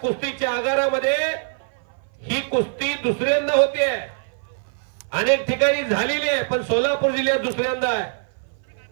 आगारामध्ये ही कुस्ती दुसऱ्यांदा होते. अनेक ठिकाणी झालेली आहे, पण सोलापूर जिल्ह्यात दुसऱ्यांदा आहे.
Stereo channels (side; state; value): left; silent; 56 dB below the other